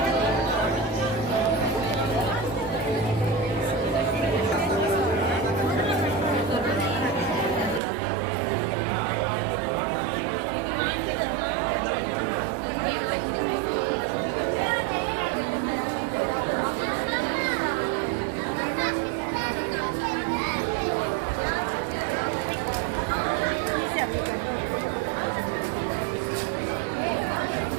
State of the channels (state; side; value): drops out; left; at 7.8 s